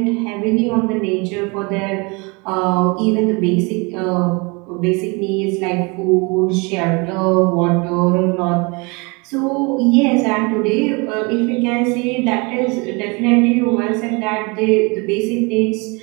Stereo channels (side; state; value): left; quieter; 28.8 dB